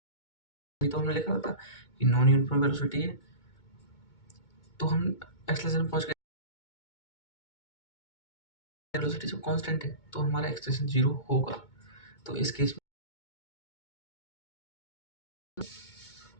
तो हमने लिखा होता कि नॉन यूनिफॉर्म वेलोसिटी है, तो हम एक्सेलरेशन पहुंच गए, वेलोसिटी जो कांस्टेंट है तो हमारा एक्सेलरेशन जीरो होगा। तो इस केस में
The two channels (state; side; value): late; right; 2.2 ms